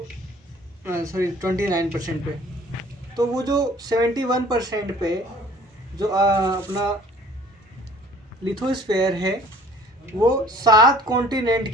सॉरी, 29% पे। तो वो जो 71% पे जो अपना लिथोस्फेयर है, वो 7 कॉन्टिनेंट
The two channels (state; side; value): normal; both; correlation 0.52